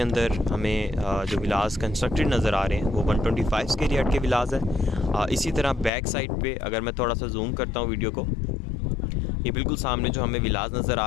अंदर हमें जो विलाज कंस्ट्रक्टेड नज़र आ रहे हैं वो 125 स्क्वायर यार्ड के विलाज है। इसी तरह बैक साइड पे अगर मैं थोड़ा सा जूम करता हूँ वीडियो को, ये बिल्कुल सामने जो हमें विलाज नज़र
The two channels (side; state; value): right; drops out; at 5.9 s